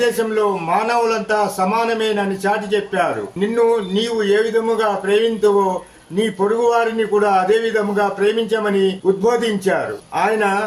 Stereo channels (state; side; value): identical; both; correlation 1.00